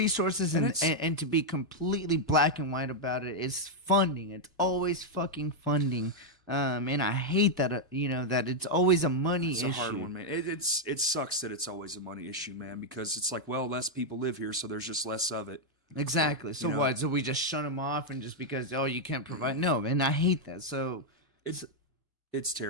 and to be completely black and white about it, is funding. It's always fucking funding. And I hate that, you know, that it's always a money issue. It's a hard one, man. It sucks that it's always a money issue, man, because it's like, well, less people live here, so there's just less of it. Exactly. So what? So we just shun them off, and just because, oh, you can't provide? No, and I hate that. So it's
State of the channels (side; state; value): both; normal; correlation -0.01